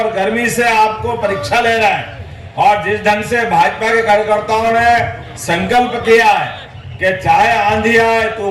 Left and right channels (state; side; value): identical; both; correlation 1.00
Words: गर्मी से आपको परीक्षा ले रहा है। और जिस ढंग से भाजपा के कार्यकर्ताओं ने संकल्प किया है कि चाहे आंधी आए,